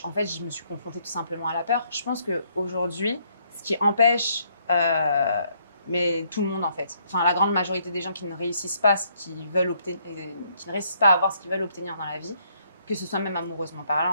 en fait, je me suis confrontée tout simplement à la peur. Je pense qu'aujourd'hui, ce qui empêche mais tout le monde en fait, enfin la grande majorité des gens qui ne réussissent pas qui ne réussissent pas à avoir ce qu'ils veulent obtenir dans la vie, que ce soit même amoureusement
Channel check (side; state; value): both; inverted; correlation -0.70